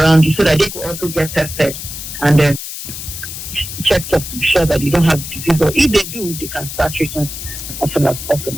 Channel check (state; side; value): noise; left; hiss, 9 dB below the sound